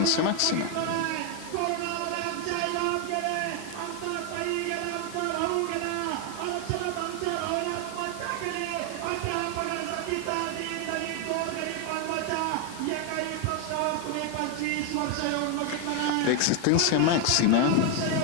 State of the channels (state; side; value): different; both; correlation 0.01